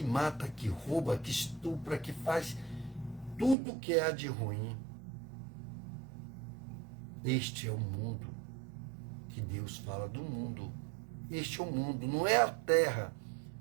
mata, que rouba, que estupra, que faz tudo que há de ruim. Este é o mundo que Deus fala do mundo. Este é o mundo, não é a terra.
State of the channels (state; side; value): drops out; left; at 3.6 s